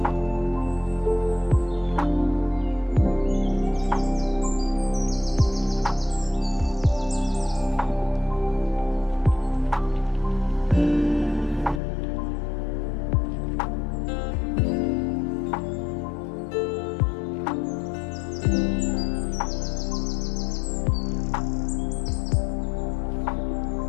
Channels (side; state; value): right; drops out; at 11.8 s